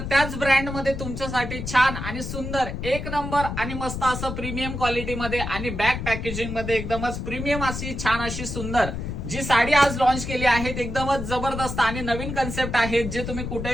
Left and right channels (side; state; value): left; noise; rumble, 5 dB below the sound